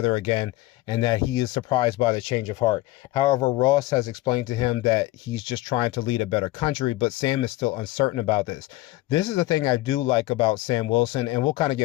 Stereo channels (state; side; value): quieter; right; 18.1 dB